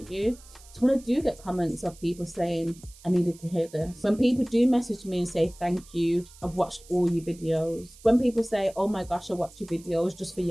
you. So when I do get comments of people saying, I needed to hear this. When people do message me and say, thank you, I've watched all your videos. When people say, oh my gosh, I watch your videos just for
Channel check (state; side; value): noise; right; hiss, 22 dB below the sound